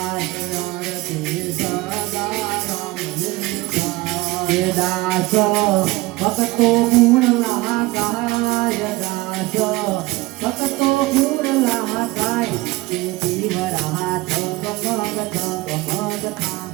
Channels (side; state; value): left; quieter; 20.7 dB